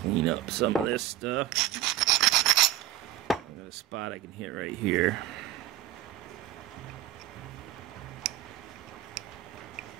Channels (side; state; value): left; quieter; 13.0 dB